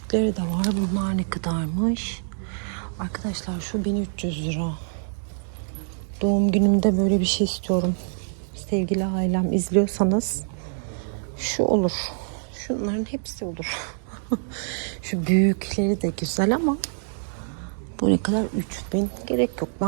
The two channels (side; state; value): left; silent; digital silence